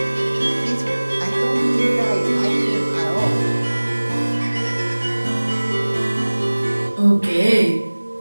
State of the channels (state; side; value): inverted; both; correlation -1.00